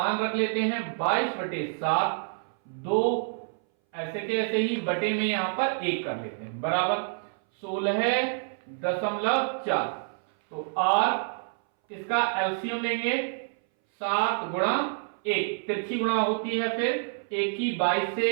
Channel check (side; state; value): left; silent; 60 dB below the other